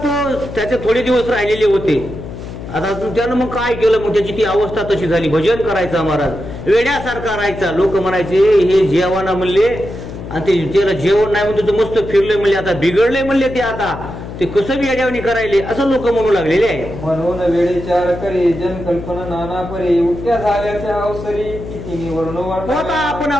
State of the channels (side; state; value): left; noise; hum, 10 dB below the sound